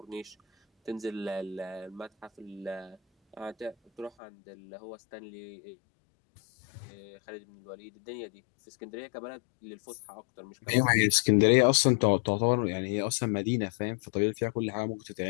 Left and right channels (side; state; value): right; drops out; at 4.1 s